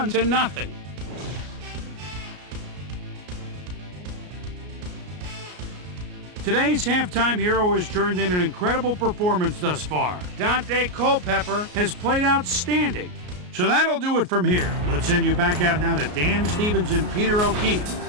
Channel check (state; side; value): late; left; 33 ms